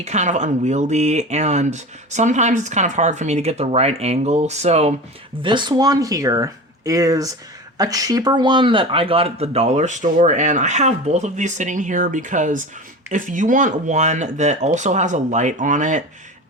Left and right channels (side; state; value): both; normal; correlation 0.31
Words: kind of unwieldy, and sometimes it's kind of hard for me to get the right angle. So this one here is a cheaper one that I got at the dollar store, and I have both of these sitting here because if you want one that also has a light on it